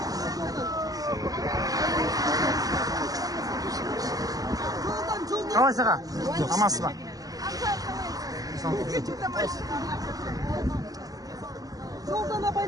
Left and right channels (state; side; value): late; left; 0.17 ms